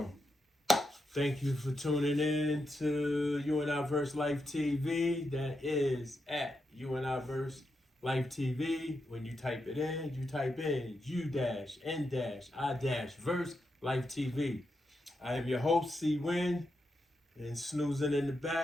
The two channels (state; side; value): normal; both; correlation 0.85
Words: Thank you for tuning in to U-N-I-VERSELIFETV. That is at U-N-I-VERSELIFETV. When you type it in, you type in U-N-I-Verse I am your host, C-Win, and snoozing in the